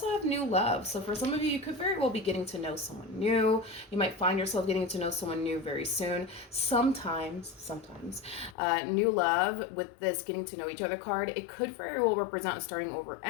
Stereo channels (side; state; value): right; drops out; at 8.6 s